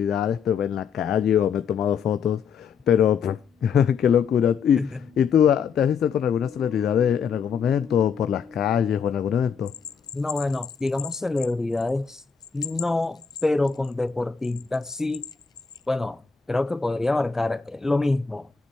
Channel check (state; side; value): quieter; right; 6.3 dB